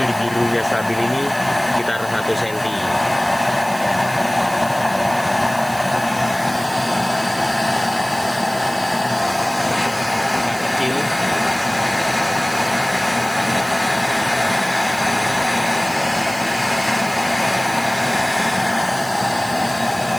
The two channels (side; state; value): right; noise; hiss, 15 dB below the sound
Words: di birunya stabil ini sekitar 1 senti. Kecil.